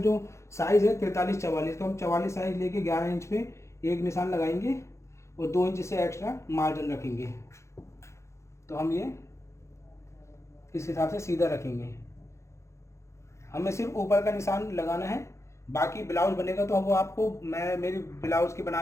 साइज़ है 43-44, तो हम 44 साइज़ लेके 11 इंच पे एक निशान लगाएंगे और 2 इंच से एक्स्ट्रा मार्जिन रखेंगे। तो हम ये इस हिसाब से सीधा रखेंगे। हमें सिर्फ ऊपर का निशान लगाना है। बाकी ब्लाउज बनेगा तो वो आपको, मैं मेरी ब्लाउज की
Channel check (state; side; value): late; right; 0.14 ms